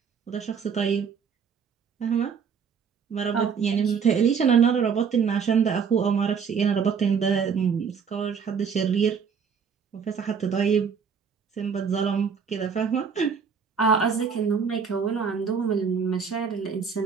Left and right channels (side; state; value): left; quieter; 6.4 dB